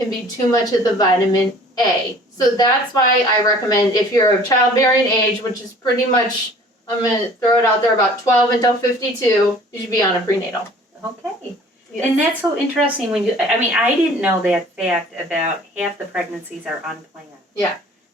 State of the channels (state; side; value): normal; both; correlation 0.50